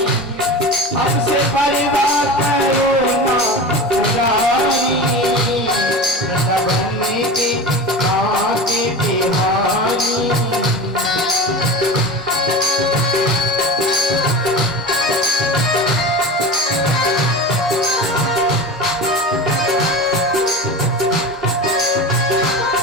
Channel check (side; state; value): both; normal; correlation 0.29